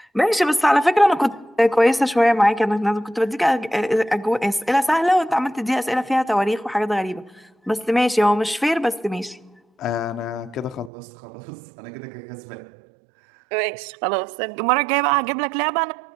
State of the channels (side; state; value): left; drops out; at 10.9 s